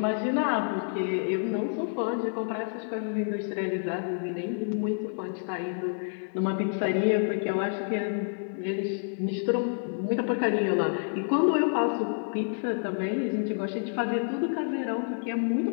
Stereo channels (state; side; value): silent; right; digital silence